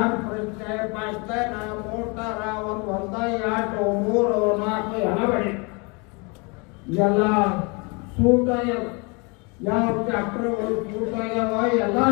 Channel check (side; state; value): right; quieter; 30.7 dB